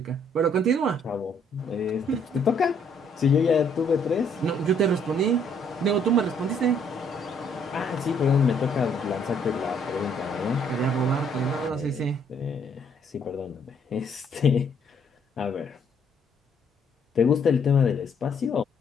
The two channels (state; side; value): normal; both; correlation 0.66